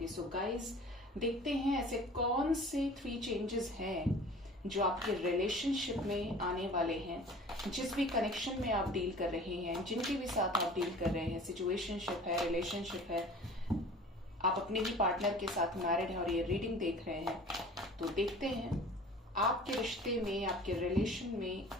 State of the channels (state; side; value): normal; both; correlation 0.44